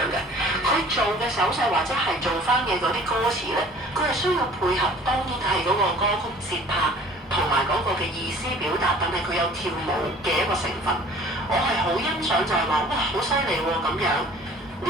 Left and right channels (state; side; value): normal; both; correlation 0.49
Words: 嘅。佢做嘅手勢或者係做翻嘅嗰啲歌詞咧，佢係需要配合，當然係嗰個歌曲節拍同埋嗰個嘅意思表達，但係佢有跳舞嘅一個成分。我係好欣賞就係話，哇，好犀利喎咁樣。